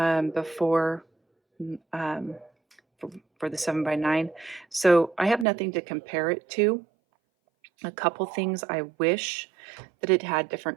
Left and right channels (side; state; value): left; drops out; at 5.5 s